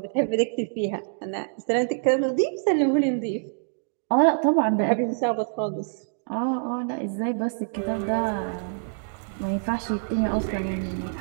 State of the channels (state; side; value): silent; left; digital silence